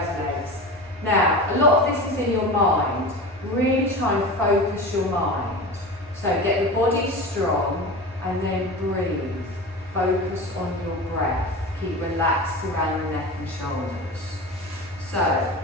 legs. Now, a lot of this is in your mind. Really try and focus your mind. So get the body strong and then breathe. Focus on your breath. Keep relaxed around the neck and shoulders. So,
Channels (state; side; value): normal; both; correlation 0.30